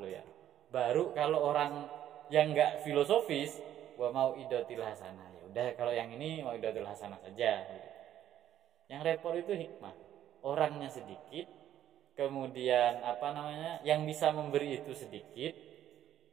loh ya. Baru kalau orang yang nggak filosofis, wa mau idatil hasanah. Ya udah kalau yang ini mau idatil hasanah saja. Yang repot itu hikmah. Orangnya sedikit, kemudian yang bisa memberi itu sedikit.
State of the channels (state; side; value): quieter; left; 11.4 dB